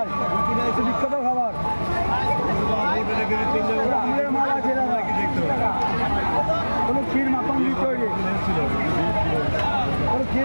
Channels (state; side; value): inverted; both; correlation -1.00